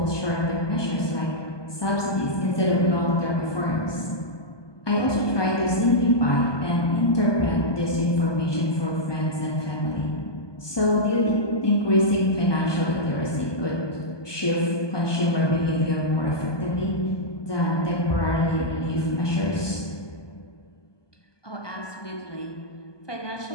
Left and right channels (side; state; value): right; late; 1.2 ms